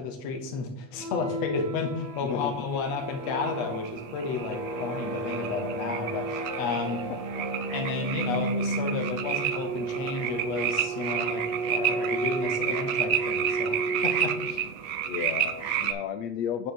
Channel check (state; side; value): late; right; 8.2 ms